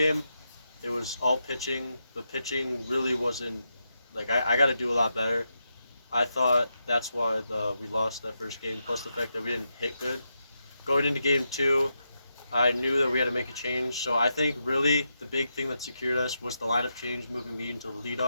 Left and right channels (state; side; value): inverted; both; correlation -0.85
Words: it was all pitching. The pitching really wasn't, like, I got to do a lot better. I thought that's why we lost that first game, plus the fact that we didn't hit good. Going into game 2, I knew that we had to make a change. So I think really the big thing that secured us was the lineup change, moving me into the